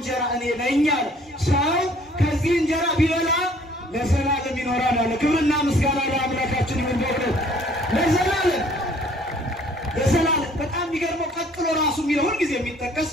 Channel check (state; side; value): normal; both; correlation 0.57